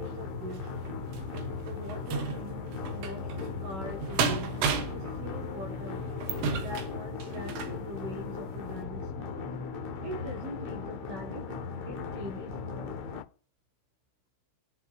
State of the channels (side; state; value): left; late; 16 ms